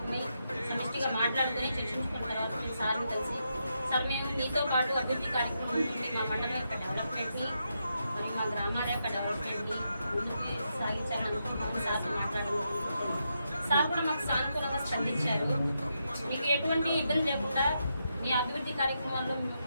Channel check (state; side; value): inverted; both; correlation -0.83